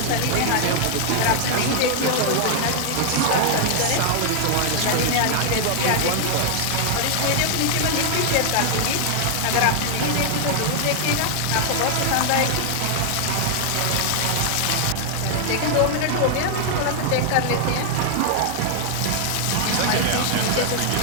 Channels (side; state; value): both; different; correlation 0.00